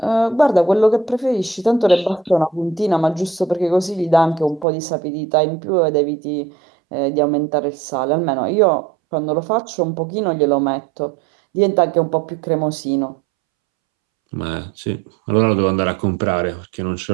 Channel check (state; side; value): drops out; left; at 4.7 s